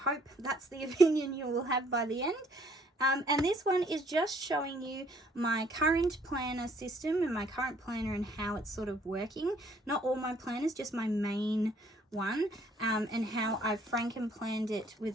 that's the opinion you will have by the end. And this one is just showing you my current planner system and my current planner and how it's sort of working. Not all my planners, just my main one, and how I've Franken planned it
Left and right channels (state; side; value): normal; both; correlation 0.63